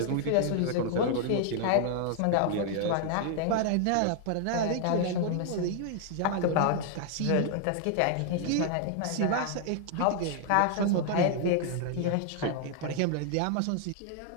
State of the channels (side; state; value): both; different; correlation 0.00